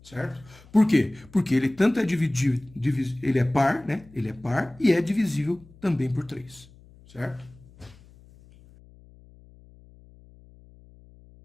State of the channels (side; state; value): left; noise; hum, 25 dB below the sound